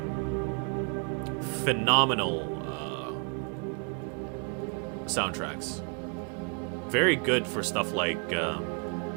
phenomenal soundtracks. Very good for stuff like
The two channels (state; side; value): quieter; left; 37.4 dB